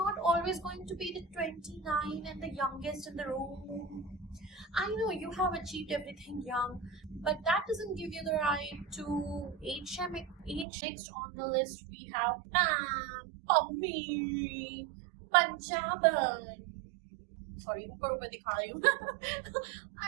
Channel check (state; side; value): drops out; left; at 10.7 s